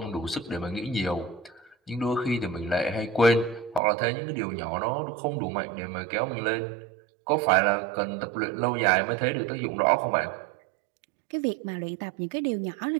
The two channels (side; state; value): left; drops out; at 3.8 s